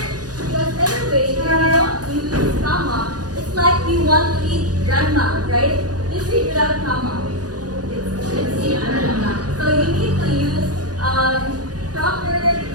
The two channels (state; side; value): late; left; 0.68 ms